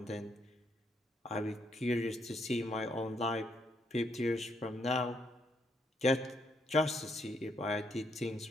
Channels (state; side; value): normal; both; correlation 0.74